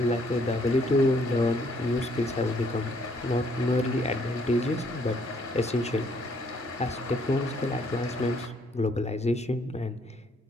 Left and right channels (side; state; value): both; normal; correlation 0.67